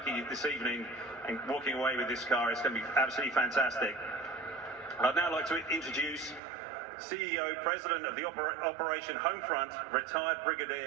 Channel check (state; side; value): drops out; left; at 6.4 s